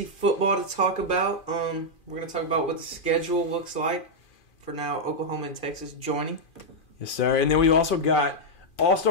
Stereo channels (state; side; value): late; right; 2.4 ms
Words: football to talk about. We're going to talk about what the schedule looks like for now. Oklahoma and Texas joining. Yes, sir. And then we've also got